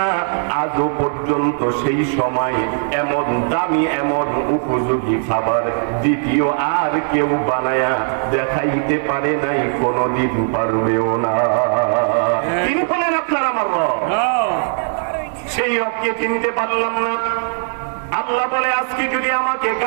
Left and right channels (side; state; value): left; silent; digital silence